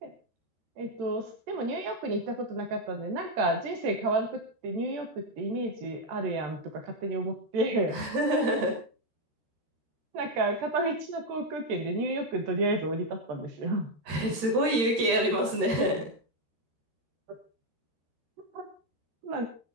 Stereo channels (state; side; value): late; left; 13 ms